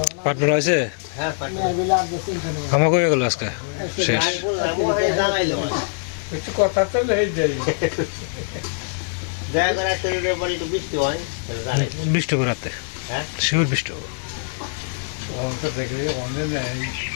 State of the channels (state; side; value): silent; right; digital silence